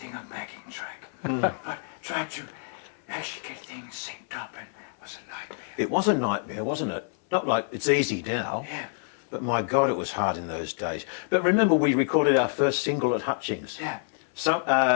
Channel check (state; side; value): silent; right; 60 dB below the other